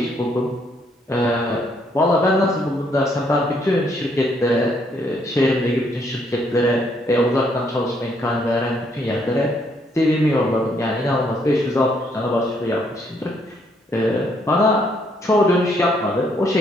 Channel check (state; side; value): normal; both; correlation 0.71